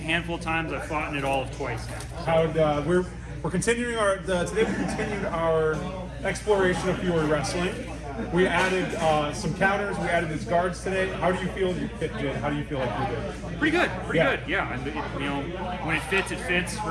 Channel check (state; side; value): identical; both; correlation 1.00